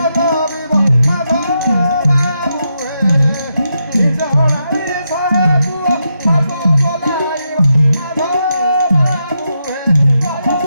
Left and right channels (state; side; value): inverted; both; correlation -0.83